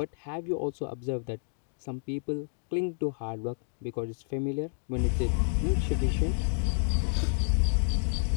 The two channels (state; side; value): silent; right; digital silence